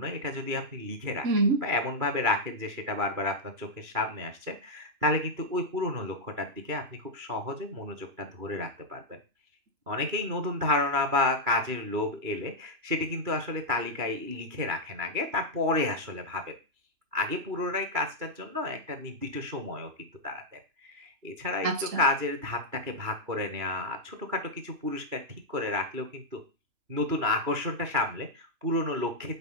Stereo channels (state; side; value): late; left; 3.0 ms